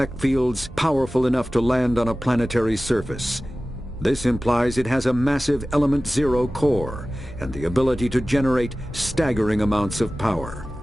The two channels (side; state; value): both; normal; correlation 0.96